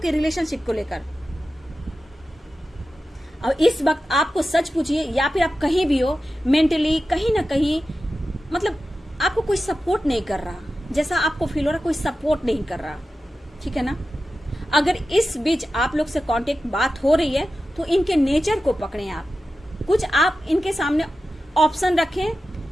रिलेशनशिप को लेकर। और इस वक्त आपको सच पूछिए, या फिर आप कहीं भी हो, मेंटली कहीं ना कहीं मतलब आपको कोई सपोर्ट नहीं कर रहा, जैसा आपको फील हो रहा कोई सपोर्ट नहीं कर रहा। ठीक है ना, अगर इस बीच आप लोग से कांटेक्ट बात हो रही है तो इनके नेचर को पकड़ें आप, कुछ आप इनके सामने ऑप्शन रखें,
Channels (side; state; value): both; normal; correlation 0.93